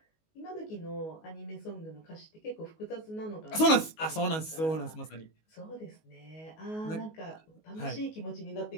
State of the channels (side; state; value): right; late; 19 ms